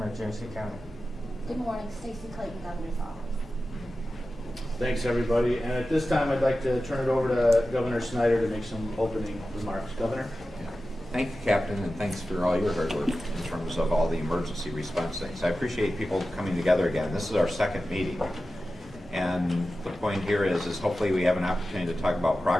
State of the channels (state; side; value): normal; both; correlation 0.94